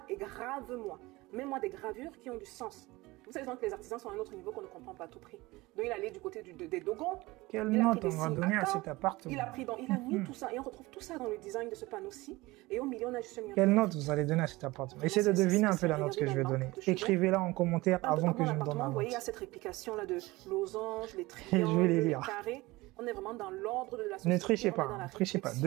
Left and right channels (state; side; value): quieter; left; 20.9 dB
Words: et grave-moi. Mets-moi des gravures qui ont du sens. Vous savez que les artisans sont à un autre niveau qu'on ne comprend pas à tout prix. Donc il allait du côté des Dogons. Quelle note on va donner à cet appartement? Il a mis tout ça. Et on retrouve tout ça dans le design de ce panneau-ci. Et au milieu, on a juste un... Quelle note vous allez donner à cet appartement? Essayez de deviner un peu la note que je vais donner. Écrivez-la en commentaire avant que je me donne la Vous voyez, il y a note. cette réplication-là de losanges, les triangles, Je vais les les lire. carrés. On est vraiment dans l'ordre de la société. Ne trichez pas, ne trichez pas.